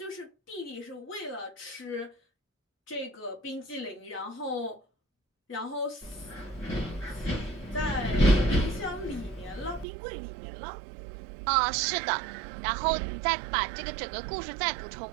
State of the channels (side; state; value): left; drops out; at 9.9 s